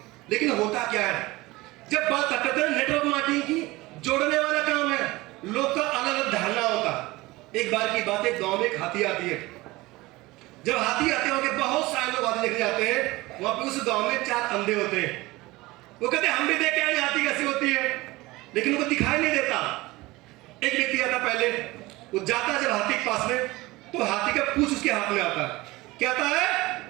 लेकिन होता क्या है, जब बात करते हैं नेटवर्क मार्केटिंग की, जोड़ने वाला काम है, लोग का अलग अलग धारणा होता। एक बार की बात है, गांव में एक हाथी आती है। जब हाथी आते हैं, बहुत सारे लोग हाथी देखने जाते हैं। वहां पे उस गांव में 4 अंधे होते हैं। वो कहते हैं हम भी देख के आए हाथी कैसी होती है, लेकिन उनको दिखाई नहीं देता। एक व्यक्ति आता पहले, वो जाता जब हाथी के पास में, तो हाथी का पूंछ उसके हाथ में आता है। क्या आता है?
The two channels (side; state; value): left; quieter; 20.6 dB